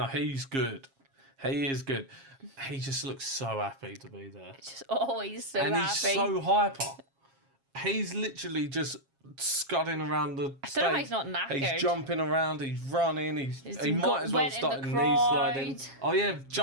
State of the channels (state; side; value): late; left; 7.4 ms